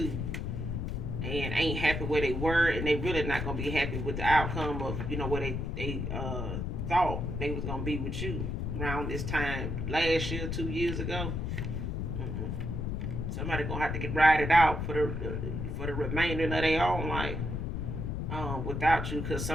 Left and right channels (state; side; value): noise; left; rumble, 2 dB below the sound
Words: and ain't happy where they were, and they really not gonna be happy with the outcome of where they thought they was gonna be with you around this time last year, 2 years ago. Mm-mm. Somebody gonna have to get ride it out for the remainder of their own life, without you, because